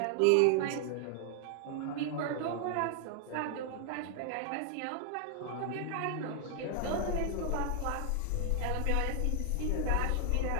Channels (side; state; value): both; different; correlation 0.00